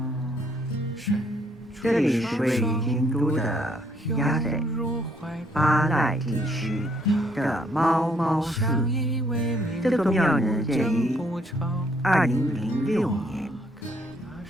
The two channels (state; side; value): normal; both; correlation 0.68